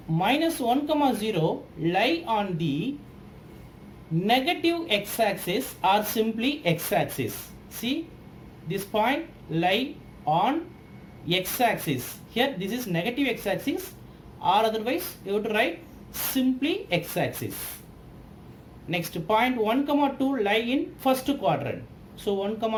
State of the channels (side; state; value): both; identical; correlation 1.00